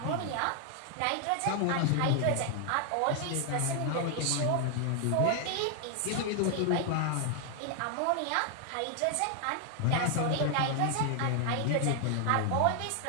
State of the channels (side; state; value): both; different; correlation 0.00